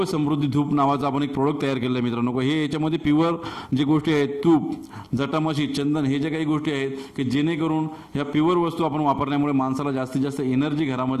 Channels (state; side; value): identical; both; correlation 1.00